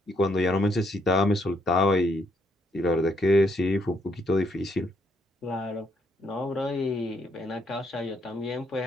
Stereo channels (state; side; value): normal; both; correlation 0.73